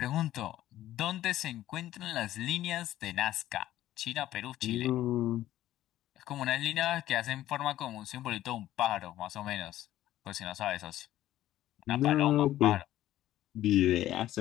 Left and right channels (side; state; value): right; quieter; 13.7 dB